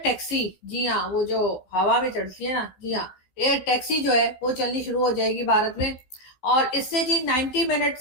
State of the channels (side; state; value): right; late; 15 ms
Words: taxi, جی ہاں وہ جو ہوا میں چلتی ہے نا، جی ہاں ایئر ٹیکسی جو ہے وہ چلنی شروع ہو جائے گی بھارت میں. اور اس سے جی 90